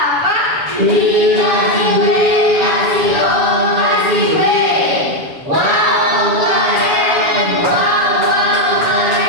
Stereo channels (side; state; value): left; late; 7.1 ms